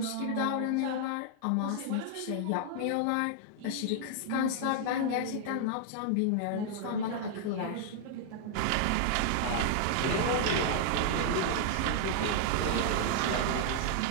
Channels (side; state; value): both; different; correlation -0.01